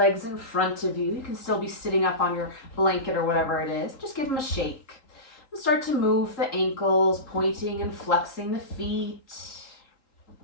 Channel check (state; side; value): late; right; 3.8 ms